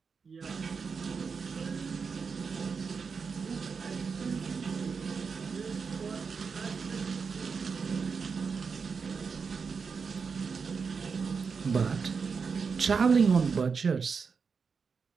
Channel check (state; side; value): quieter; left; 5.5 dB